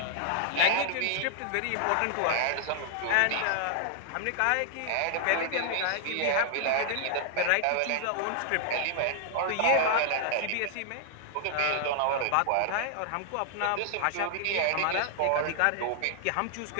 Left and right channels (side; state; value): both; different; correlation -0.01